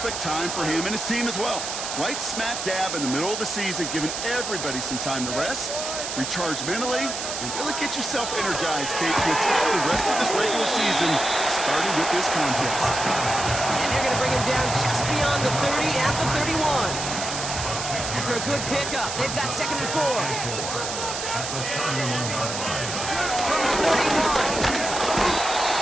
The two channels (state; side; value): noise; right; hiss, 5 dB below the sound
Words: time for him and his team as well. Right smack dab in the middle of the season, giving everybody some time to rest, recharge mentally, and really get yourself energized, Kate, to attack the rest of this regular season, starting with this contest. And they're going to bring him down just beyond the 30 at the 31. After a good pickup, they've got 2nd and 4. From the 31.